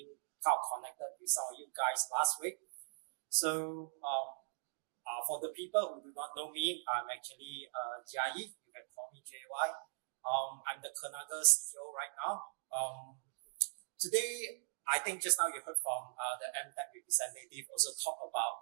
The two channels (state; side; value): silent; left; digital silence